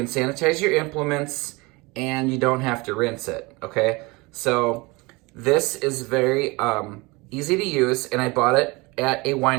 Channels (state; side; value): quieter; left; 24.9 dB